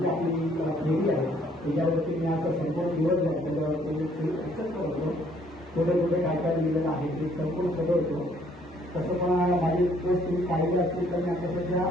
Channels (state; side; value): normal; both; correlation 0.64